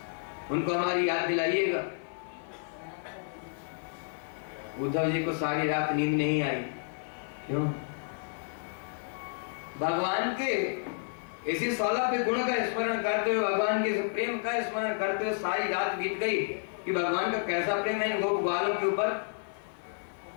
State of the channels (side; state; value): right; silent; digital silence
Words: उनको हमारी याद दिलाइएगा। उद्धव जी को सारी रात नींद नहीं आई। क्यों? भगवान के इसी 16 पे गुण का स्मरण करते हुए, भगवान के प्रेम का स्मरण करते हुए सारी रात बीत गई कि भगवान का कैसा प्रेम है इन गोप ग्वालों के ऊपर,